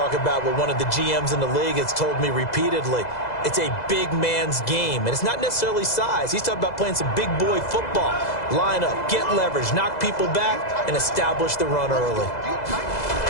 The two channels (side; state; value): right; late; 2.0 ms